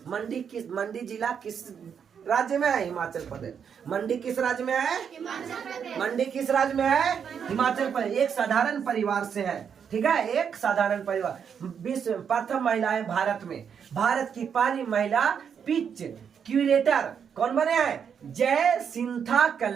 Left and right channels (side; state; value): left; quieter; 7.4 dB